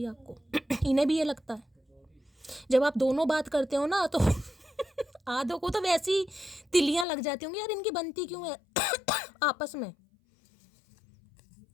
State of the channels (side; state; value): right; drops out; at 7.1 s